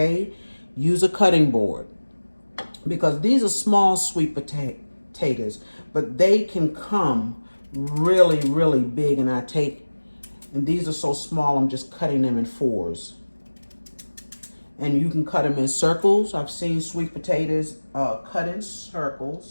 Use a cutting board, because these are small sweet potatoes, but they can come really, really big, and these are so small, I'm just cutting them in fours. And you can cut them in circles. I've seen sweet potatoes cut in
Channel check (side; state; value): both; inverted; correlation -1.00